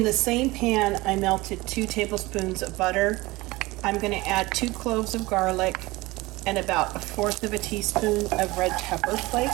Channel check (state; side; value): quieter; left; 21.0 dB